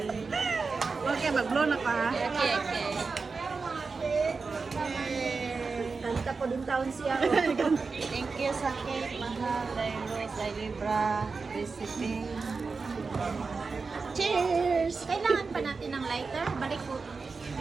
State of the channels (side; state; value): left; quieter; 4.5 dB